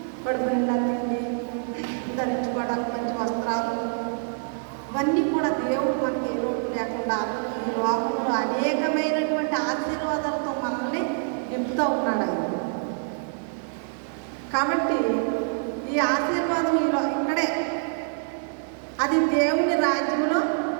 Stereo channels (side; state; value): left; silent; 61 dB below the other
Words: కడుపు నిండా తిండి, ధరించుకోవడానికి మంచి వస్త్రాలు, ఇవన్నీ కూడా దేవుడు మనకి ఏ లోటు లేకుండా ఈ లోకంలో అనేకమైనటువంటి ఆశీర్వాదాలతో మనల్ని నింపుతూ ఉన్నాడు ఆయన. కాబట్టి ఈ ఆశీర్వాదం ఇక్కడే, అది దేవుని రాజ్యంలో.